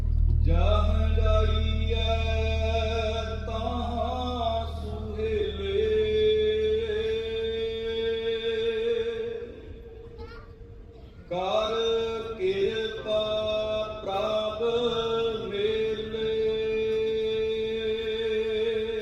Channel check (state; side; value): identical; both; correlation 1.00